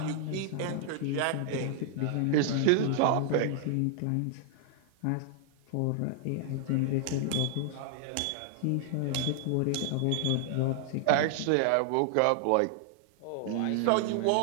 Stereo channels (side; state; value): both; different; correlation 0.00